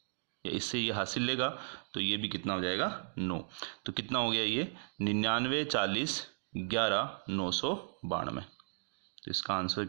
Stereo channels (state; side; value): silent; left; digital silence